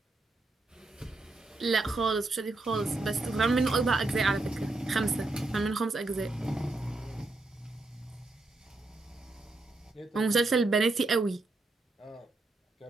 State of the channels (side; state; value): left; quieter; 3.1 dB